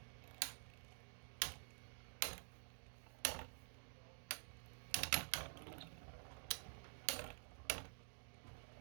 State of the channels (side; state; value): left; silent; digital silence